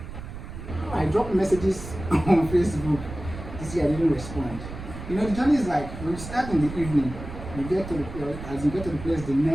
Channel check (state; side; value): noise; right; rumble, 11 dB below the sound